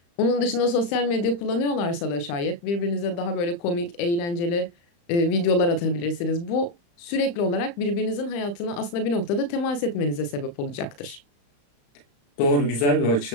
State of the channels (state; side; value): late; right; 35 ms